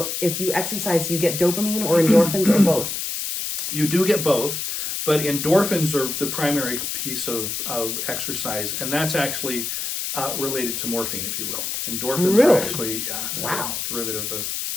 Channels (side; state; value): left; noise; hiss, 3 dB below the sound